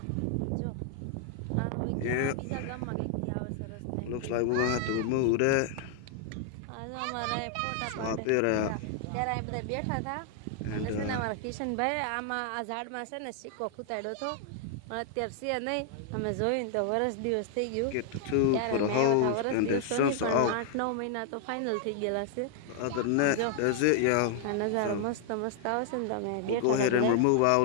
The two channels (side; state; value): both; different; correlation 0.00